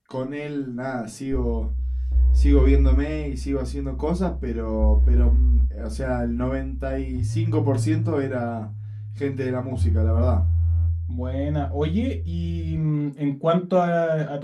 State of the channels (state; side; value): identical; both; correlation 1.00